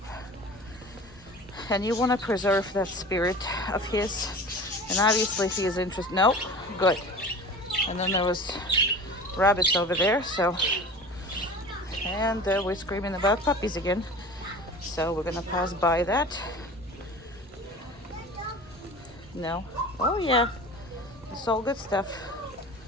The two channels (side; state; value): both; normal; correlation 0.37